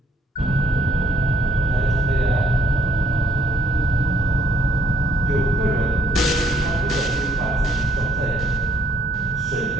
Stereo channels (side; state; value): both; normal; correlation 0.70